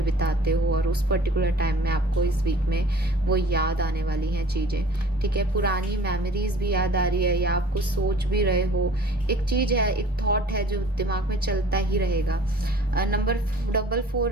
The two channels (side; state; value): both; normal; correlation 0.49